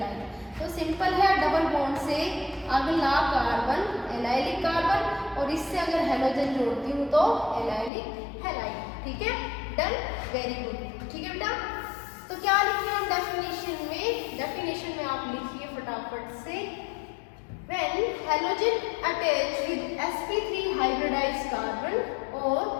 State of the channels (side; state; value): right; drops out; at 7.9 s